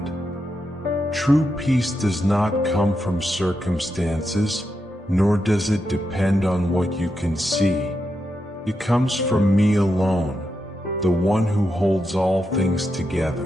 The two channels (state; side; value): normal; both; correlation 0.85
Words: True peace does not come from circumstances, nor does it depend on what you can see. It comes from me alone, the one who holds all things